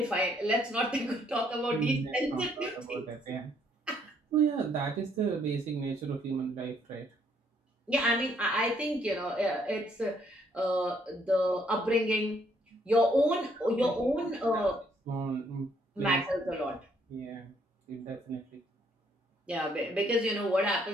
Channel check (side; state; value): both; normal; correlation 0.68